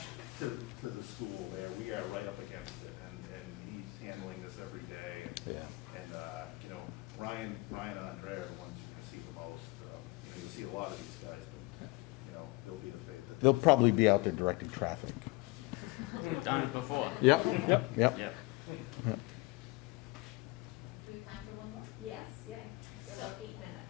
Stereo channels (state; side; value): quieter; right; 23.7 dB